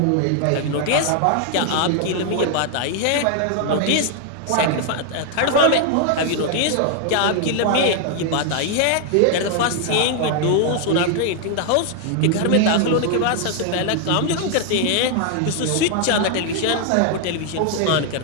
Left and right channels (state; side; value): different; both; correlation 0.00